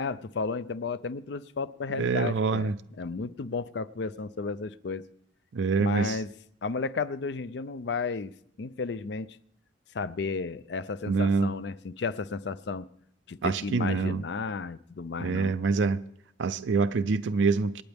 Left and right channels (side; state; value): both; normal; correlation 0.38